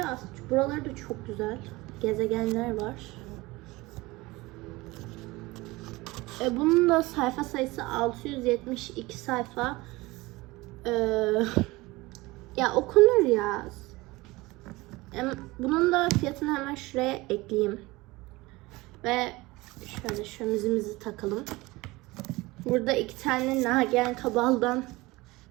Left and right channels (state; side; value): quieter; left; 21.4 dB